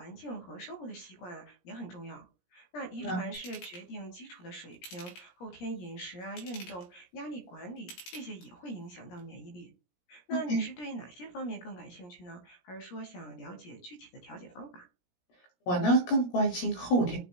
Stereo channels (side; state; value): right; late; 17 ms